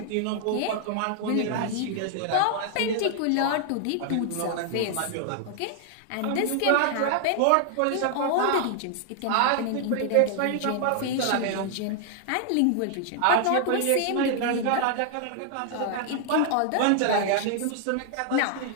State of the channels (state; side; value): different; both; correlation 0.00